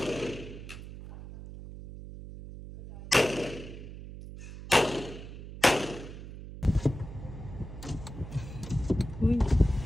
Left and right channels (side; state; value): right; noise; hum, 12 dB below the sound